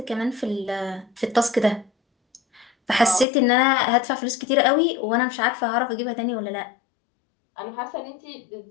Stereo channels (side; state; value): right; drops out; at 3.2 s